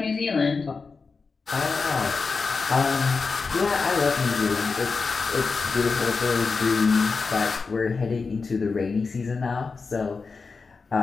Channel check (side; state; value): right; quieter; 4.6 dB